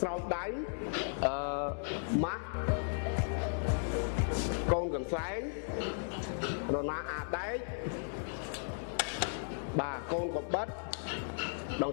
ស្រោមដៃម៉ាស់កូនកន្សែងរណាអាដែកបាទកូនកបិតដង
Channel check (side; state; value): right; silent; digital silence